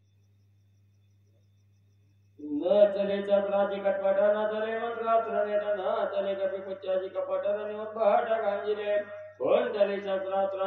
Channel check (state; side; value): identical; both; correlation 1.00